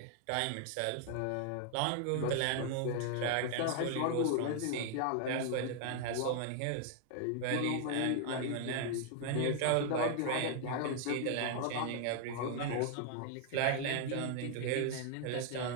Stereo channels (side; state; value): both; different; correlation 0.00